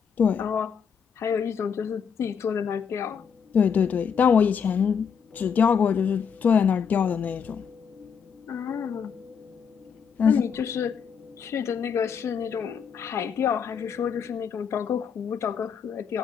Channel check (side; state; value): right; quieter; 6.8 dB